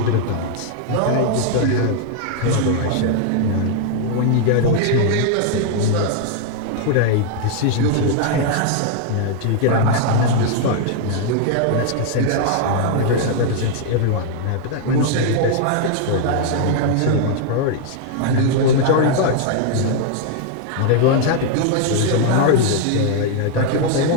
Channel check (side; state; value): both; different; correlation 0.00